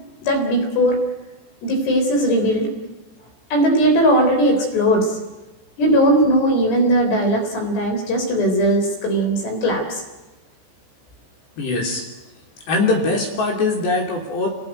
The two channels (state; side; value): late; right; 14 ms